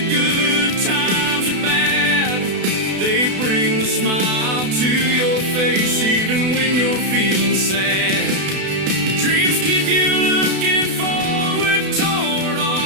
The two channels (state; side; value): late; left; 32 ms